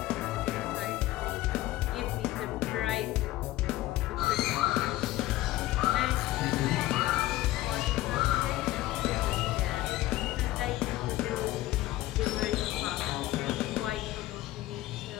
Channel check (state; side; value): quieter; right; 16.4 dB